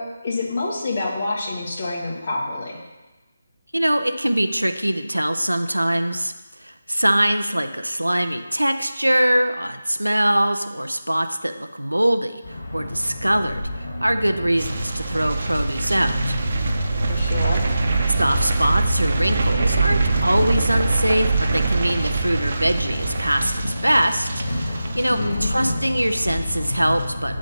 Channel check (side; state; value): both; inverted; correlation -0.94